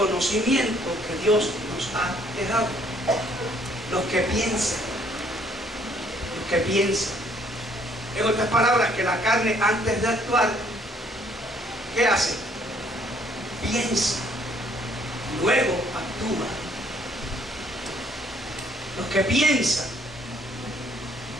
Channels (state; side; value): normal; both; correlation 0.64